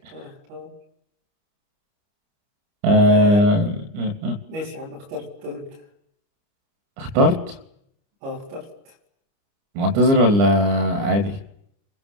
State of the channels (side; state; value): left; late; 30 ms